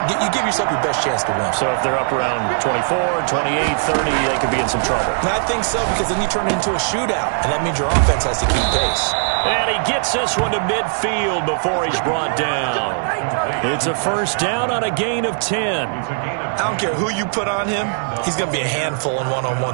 your best chance to win. So if they're up around 24, 28, 30, they could be in some trouble. And I think so, because then you turn it into a shootout, and that means your offense has to keep pace. And he gets this one to midfield before he's brought down. It's a 1st down on a gain of 10. I don't care who you put on him. He's going to be a handful in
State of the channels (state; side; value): silent; left; digital silence